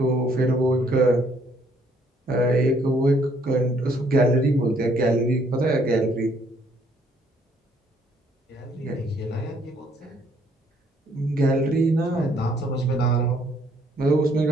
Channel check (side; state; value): both; normal; correlation 0.66